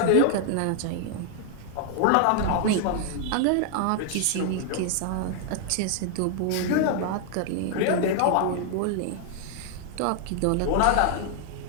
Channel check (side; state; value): both; different; correlation 0.00